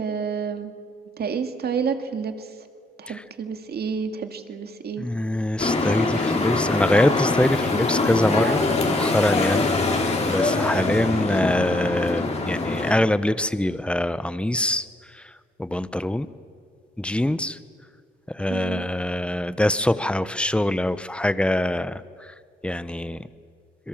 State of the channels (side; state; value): both; normal; correlation 0.73